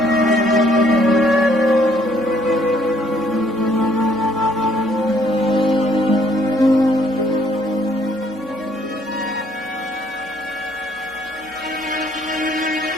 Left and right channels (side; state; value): both; normal; correlation 0.65